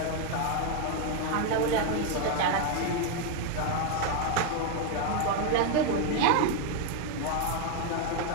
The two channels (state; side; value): different; both; correlation 0.01